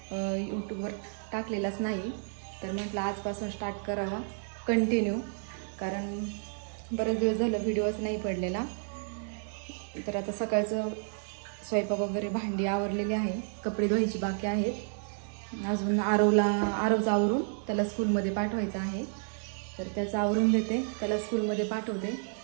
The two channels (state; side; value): silent; left; 57 dB below the other